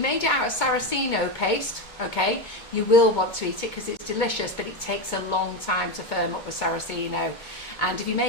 it out of Saraceno paste, okay, you will want to eat it because it's delicious, but it takes a long time to firm up with Saraceno. And if you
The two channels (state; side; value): late; right; 2.2 ms